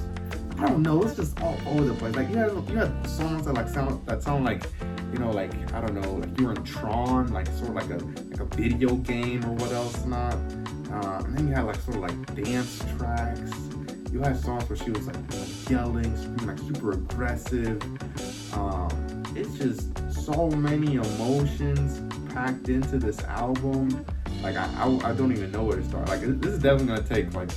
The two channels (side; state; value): both; identical; correlation 1.00